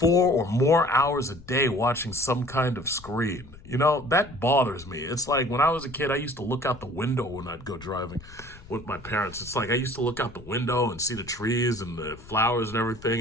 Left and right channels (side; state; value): left; noise; rumble, 19 dB below the sound